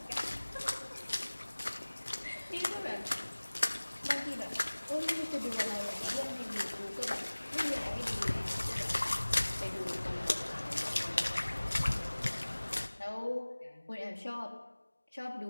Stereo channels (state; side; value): inverted; both; correlation -1.00